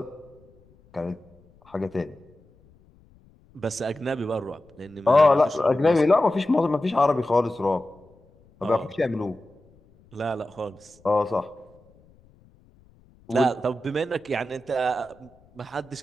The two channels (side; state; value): left; noise; rumble, 29 dB below the sound